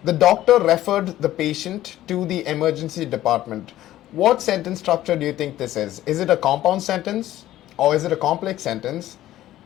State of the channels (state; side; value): quieter; right; 14.0 dB